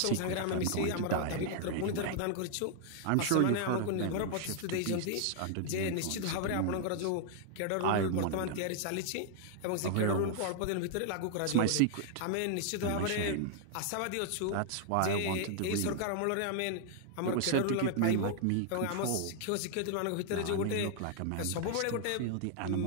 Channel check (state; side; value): different; both; correlation 0.00